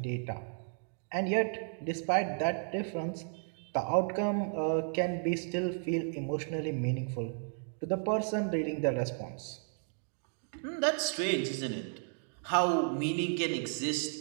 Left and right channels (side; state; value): left; silent; 55 dB below the other